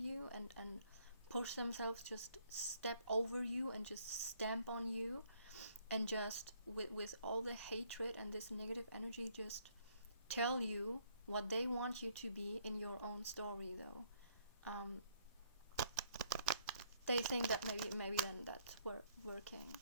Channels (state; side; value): inverted; both; correlation -0.67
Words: and push themselves, just step over you and just stamp on you, and just with all the hatred and this negative energy, just tell you what they want you to be in your own story, though, they think that maybe then that's working.